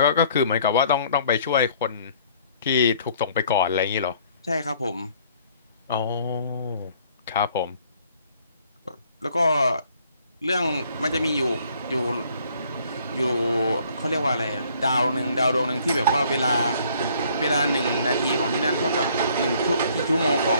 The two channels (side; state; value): both; inverted; correlation -0.60